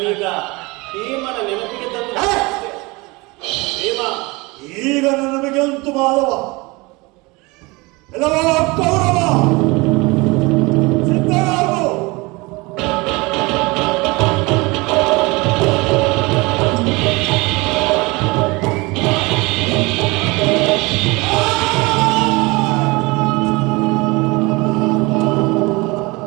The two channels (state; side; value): quieter; left; 24.6 dB